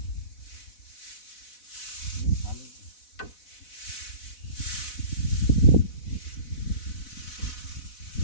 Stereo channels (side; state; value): right; late; 4.0 ms